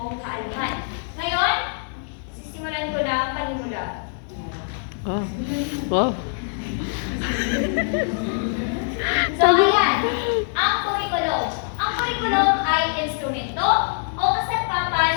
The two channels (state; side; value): silent; right; digital silence